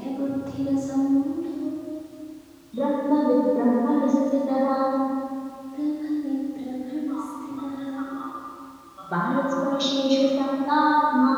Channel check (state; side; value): identical; both; correlation 1.00